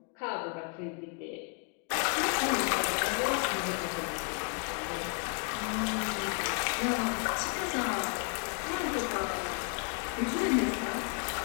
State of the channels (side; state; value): right; quieter; 39.7 dB